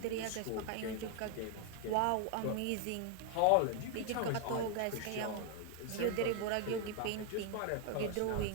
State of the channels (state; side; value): different; both; correlation 0.00